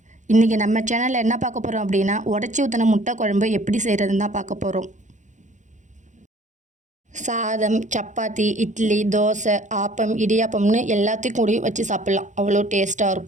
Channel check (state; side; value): late; left; 0.35 ms